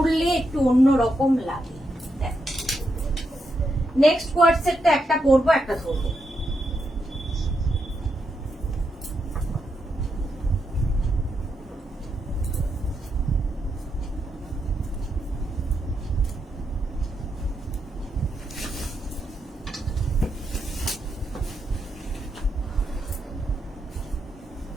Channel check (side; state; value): both; normal; correlation 0.83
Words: একটু অন্যরকম লাগে। নেক্সট কোয়ার্ড সেটটা একটা পরবো, একটা ধরবো।